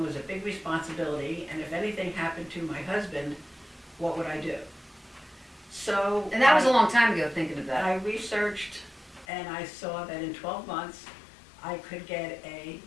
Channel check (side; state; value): right; drops out; at 9.2 s